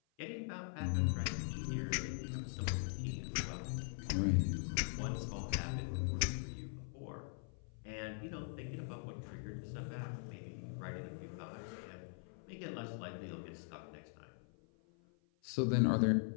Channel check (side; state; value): right; silent; 50 dB below the other